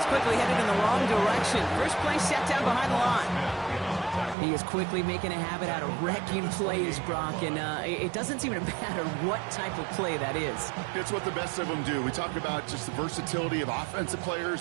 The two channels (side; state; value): left; drops out; at 4.4 s